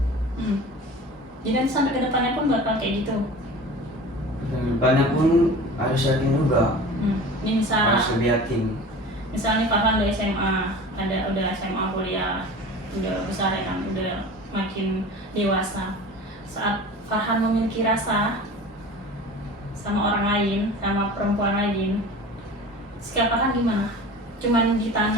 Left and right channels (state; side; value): normal; both; correlation 0.38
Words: Jadi nanti sampai ke depannya pun bakal kayak gitu. Depannya pun harus yakin juga. Ini Harus lebih yakin. misalnya Farhan udah SMA, udah SMA kuliah, udah besar ya kan, udah makin dewasa. Saat Farhan memiliki rasa sama orang lain, sama perempuan lain, sikap Farhan gimana? Cuman